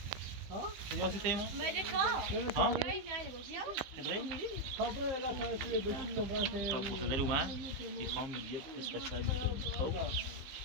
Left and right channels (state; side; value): late; left; 15 ms